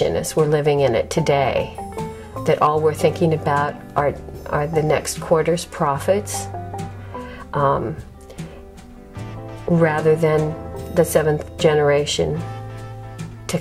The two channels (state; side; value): identical; both; correlation 1.00